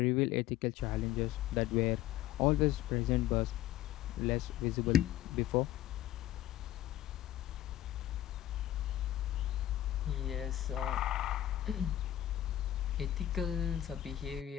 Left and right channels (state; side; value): quieter; right; 13.0 dB